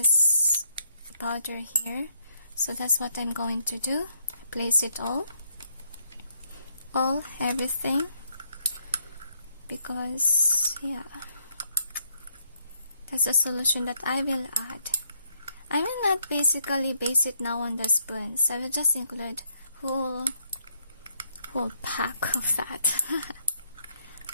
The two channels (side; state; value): both; inverted; correlation -0.73